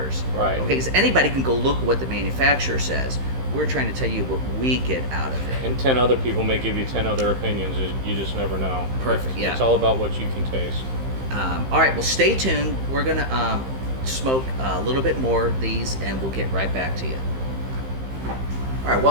Right. Okay, because anybody can go look at what the manufacturer says. We're trying to tell you what we get out of it. And 10 other people may give you 10 other opinions. You just never know. Perfect, yeah. It's all about what you can taste. All right, well, stay tuned. We're going to smoke a little bit more of these, and we'll get right back to you. All right,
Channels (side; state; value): left; late; 15 ms